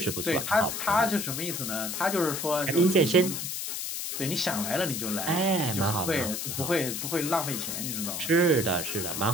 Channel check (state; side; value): noise; left; hiss, 4 dB below the sound